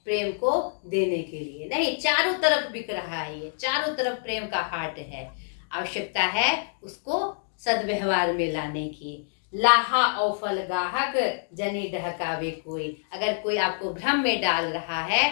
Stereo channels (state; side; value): silent; right; digital silence